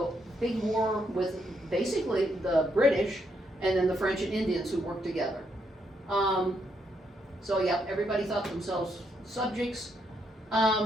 big war with basically the British and then the French and Indians who worked together. So yeah, everybody thought themselves subjects.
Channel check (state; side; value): normal; both; correlation 0.77